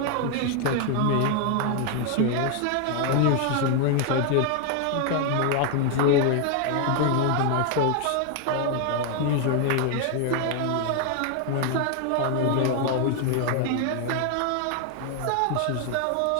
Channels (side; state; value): both; different; correlation 0.00